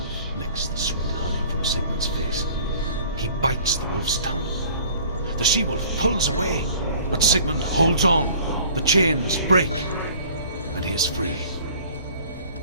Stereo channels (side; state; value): both; inverted; correlation -0.50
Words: licks the sweet honey from Sigmund's face, he bites the wolf's tongue. The she-wolf pulls away, but Sigmund holds on. The chains break, and he is free.